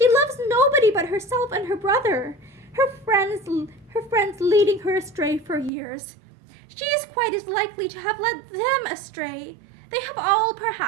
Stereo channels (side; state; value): left; drops out; at 5.7 s